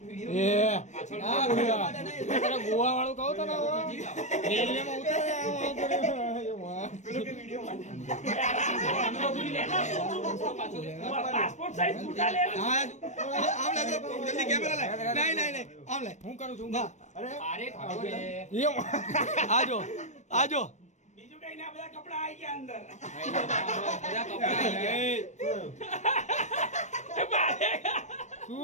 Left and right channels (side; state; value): right; late; 0.34 ms